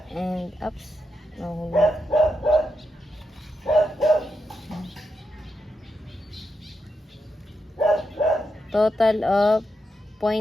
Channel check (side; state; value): both; normal; correlation 0.85